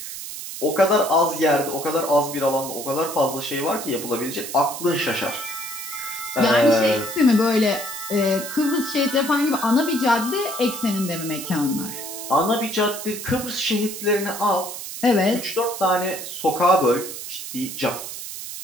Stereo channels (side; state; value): right; noise; hiss, 9 dB below the sound